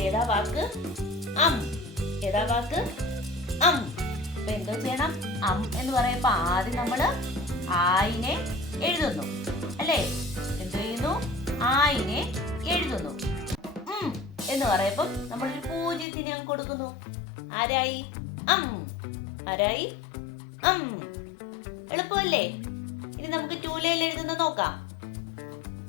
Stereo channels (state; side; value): drops out; right; at 16.1 s